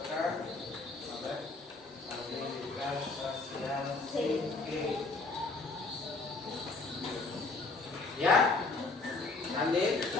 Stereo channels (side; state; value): right; quieter; 3.6 dB